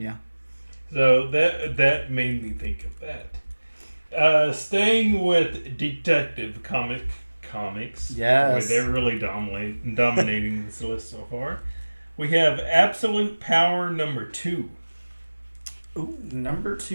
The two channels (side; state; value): both; inverted; correlation -1.00